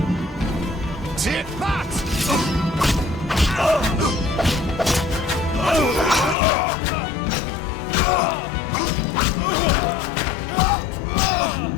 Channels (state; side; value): drops out; right; at 6.4 s